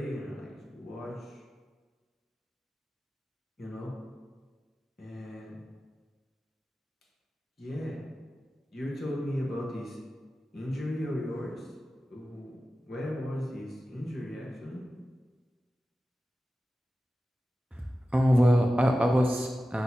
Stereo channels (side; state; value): both; normal; correlation 0.94